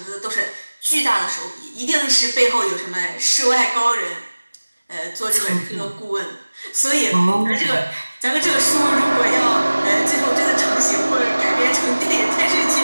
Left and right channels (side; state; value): both; inverted; correlation -1.00